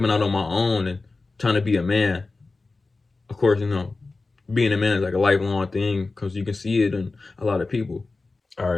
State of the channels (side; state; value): right; quieter; 3.6 dB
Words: out on my own and trying to be a man. Of course, being a man is like a lifelong thing, because you can see it in a lot of people. All